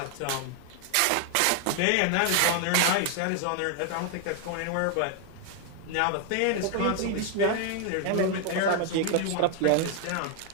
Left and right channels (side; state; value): both; different; correlation 0.00